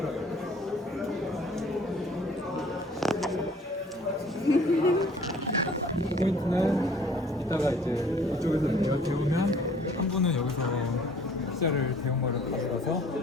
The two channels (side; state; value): both; normal; correlation 0.54